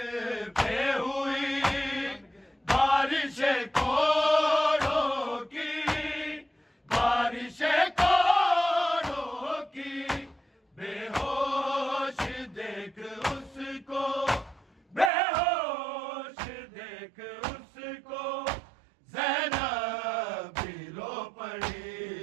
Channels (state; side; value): drops out; left; at 15.1 s